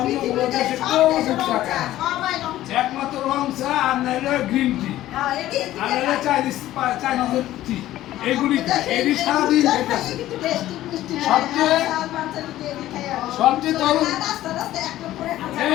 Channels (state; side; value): quieter; right; 14.3 dB